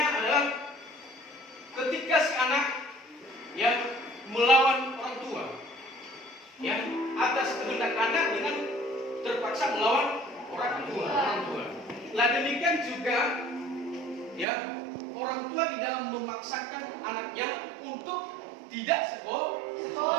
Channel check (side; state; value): left; drops out; at 14.5 s